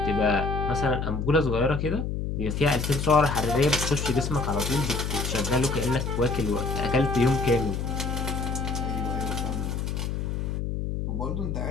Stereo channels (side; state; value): left; noise; hum, 2 dB below the sound